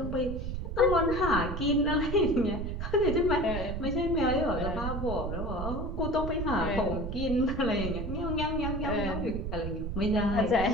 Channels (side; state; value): right; noise; rumble, 4 dB below the sound